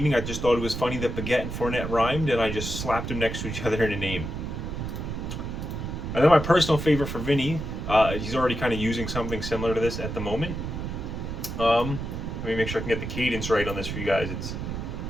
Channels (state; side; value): noise; right; rumble, 5 dB below the sound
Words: I just thought it was funny that baguette and Fournette rhymed, and I just slapped them next to each other in a name. And then my personal favorite for Vinny, he's already kind of using something similar to this at the moment. Let me make sure I can get the cadence right on this for you guys. It's